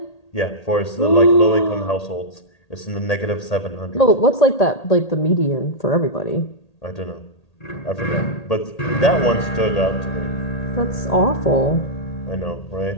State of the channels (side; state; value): right; late; 1.8 ms